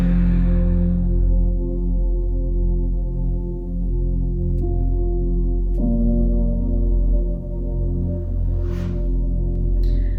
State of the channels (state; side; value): identical; both; correlation 1.00